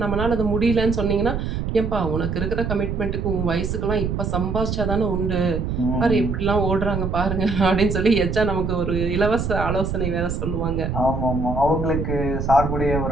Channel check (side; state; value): right; noise; rumble, 2 dB below the sound